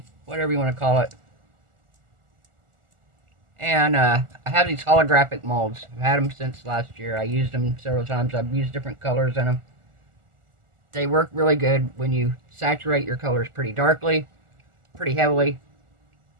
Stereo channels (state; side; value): late; left; 1.4 ms